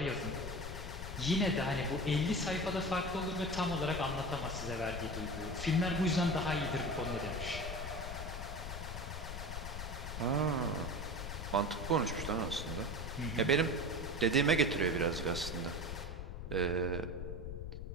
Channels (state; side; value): noise; left; rumble, 6 dB below the sound